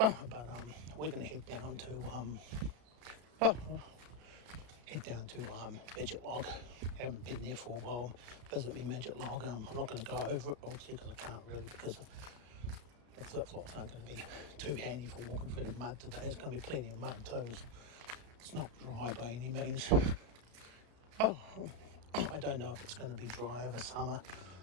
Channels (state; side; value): late; left; 33 ms